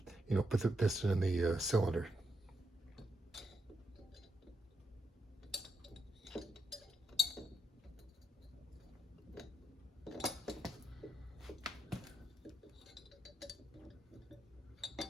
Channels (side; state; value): both; normal; correlation 0.81